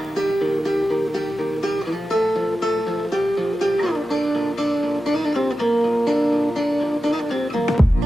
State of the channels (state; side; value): normal; both; correlation 0.92